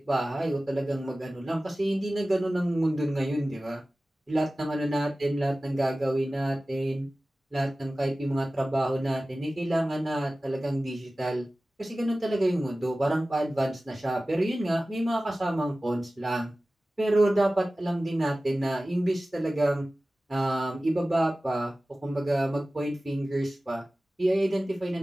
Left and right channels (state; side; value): normal; both; correlation 0.97